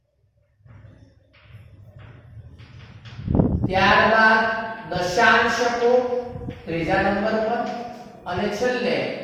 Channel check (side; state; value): both; identical; correlation 1.00